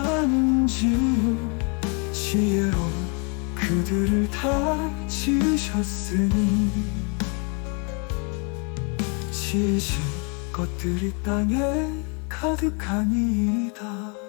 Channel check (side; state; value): right; quieter; 35.6 dB